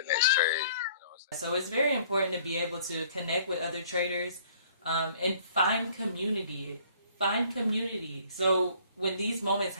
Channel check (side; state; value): both; inverted; correlation -0.57